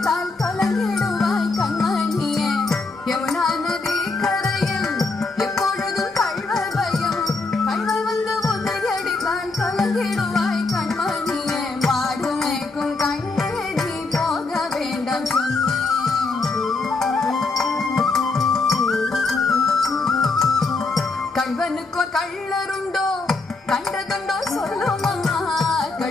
கலங்கிடுவாய் கண்மணியே யமுனா நதி கரையில் எப்பொழுதும் கள்வர் பயம் கள்வர் வந்து உன்னை அடித்தால் கலங்கிடுவாய் கண்மணியே மாடு மேய்க்கும் கண்ணே நீ போக வேண்டாம் கள்வனுக்கோ கள்ளருண்டோ கண்டதுண்டோ சொல்லும் அம்மா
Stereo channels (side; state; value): right; quieter; 3.7 dB